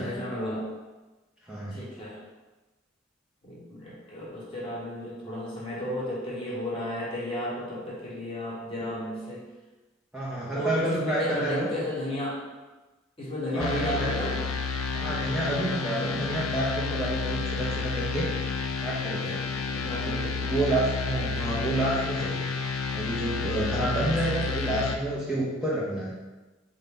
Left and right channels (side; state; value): both; normal; correlation 0.48